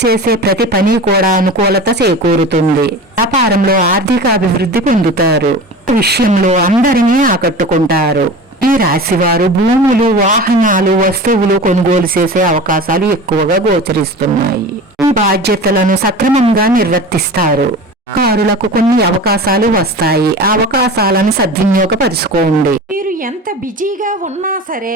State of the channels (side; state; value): both; normal; correlation 0.34